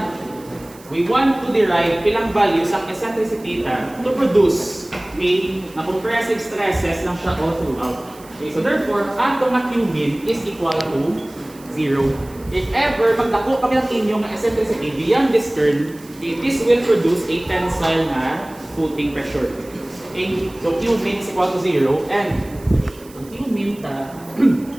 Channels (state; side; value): noise; right; hiss, 23 dB below the sound